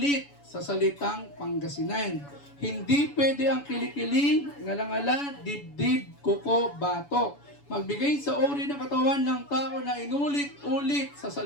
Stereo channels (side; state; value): right; late; 7.0 ms